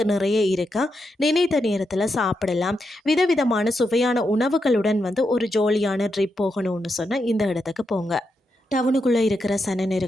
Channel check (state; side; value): normal; both; correlation 0.84